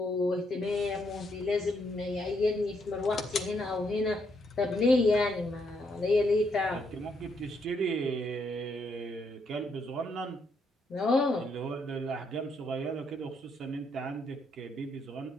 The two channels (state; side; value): normal; both; correlation 0.75